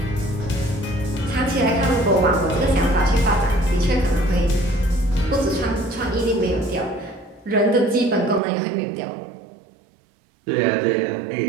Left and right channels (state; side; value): drops out; left; at 8.4 s